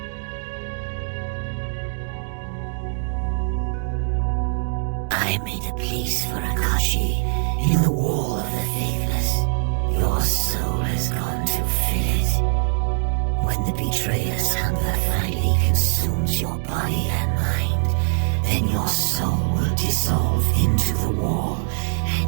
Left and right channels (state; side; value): silent; left; digital silence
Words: I made a place for Akashi in the wall of the faithless. Your soul has gone to fill it. When the betrayer's hunger finally consumes your body and mind, then your soul will dissolve into the wall,